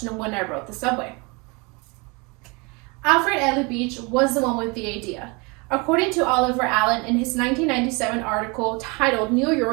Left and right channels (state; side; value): quieter; left; 28.9 dB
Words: when I wrote the subway. Alfred Ely Beach was the one with the idea. According to Oliver Allen in his 1997 article titled New